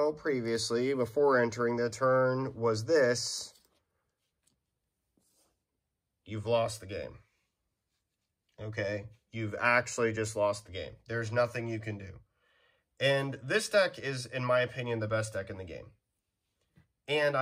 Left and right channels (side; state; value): both; identical; correlation 1.00